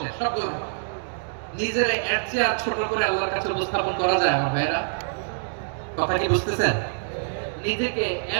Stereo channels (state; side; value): silent; left; digital silence